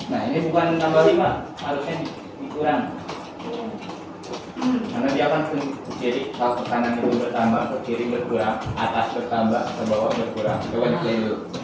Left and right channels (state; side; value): identical; both; correlation 1.00